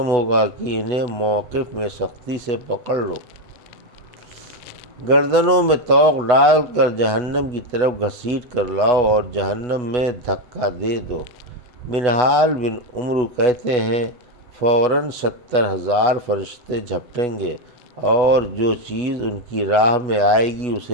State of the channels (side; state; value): left; late; 8.1 ms